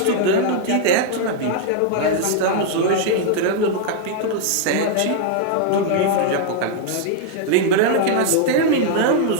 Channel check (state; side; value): different; both; correlation -0.01